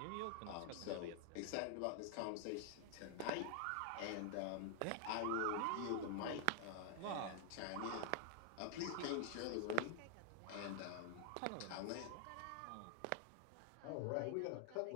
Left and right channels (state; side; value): different; both; correlation 0.00